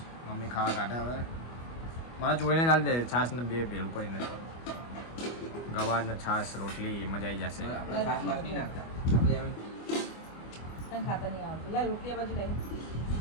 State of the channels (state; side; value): late; right; 25 ms